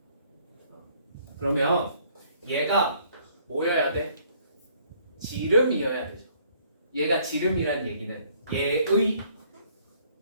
그러면 얘가 뭐여야 돼? 지름이어야 되죠. 얘가 지름이란 얘기는 얘의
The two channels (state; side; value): inverted; both; correlation -0.62